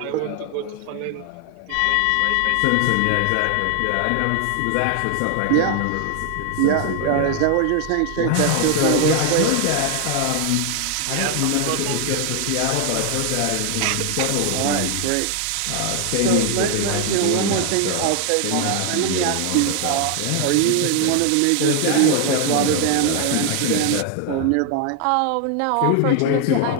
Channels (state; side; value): different; both; correlation 0.00